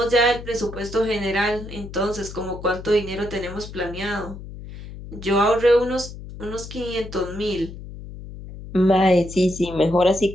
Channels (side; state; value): left; noise; hum, 13 dB below the sound